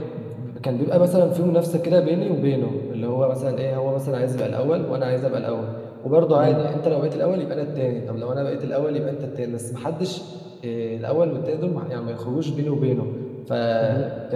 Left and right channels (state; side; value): identical; both; correlation 1.00